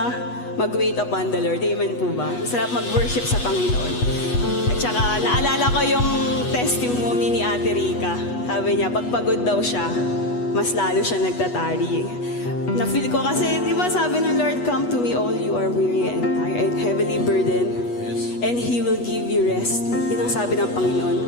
mag-wait upon the Lord. Amen po ba? Ang sarap mag-worship sa Panginoon. At saka, naalala ko yung testimony ni Ate Rica. Sabi niya, pagpagod daw siya, mas lalo siya nagtatari. Na-feel ko kasi, di ba sabi ng Lord, come to me all you are weary and tired, heavily burdened, and He will give you rest. Yun ang sabi ng Panginoon.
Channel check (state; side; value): late; right; 8.2 ms